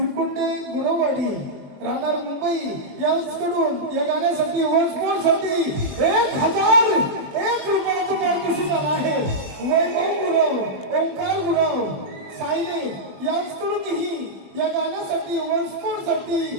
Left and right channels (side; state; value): left; late; 21 ms